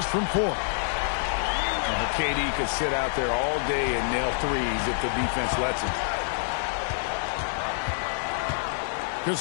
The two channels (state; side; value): silent; right; digital silence